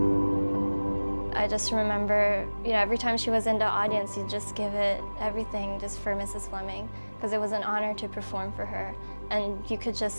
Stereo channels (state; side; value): inverted; both; correlation -1.00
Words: I just remember, every time she was in the audience, you'd just give it everything just for Mrs. Fleming, because it was an honor to perform for her, and you could